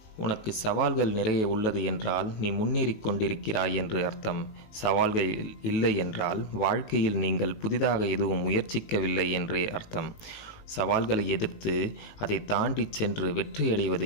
உனக்கு சவால்கள் நிறைய உள்ளது என்றால் நீ முன்னேறிக் கொண்டிருக்கிறாய் என்று அர்த்தம். சவால்கள் இல்லை என்றால் வாழ்க்கையில் நீங்கள் புதிதாக எதுவும் முயற்சிக்கவில்லை என்றே அர்த்தம். சவால்களை எதிர்த்து அதை தாண்டி சென்று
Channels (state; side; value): late; right; 19 ms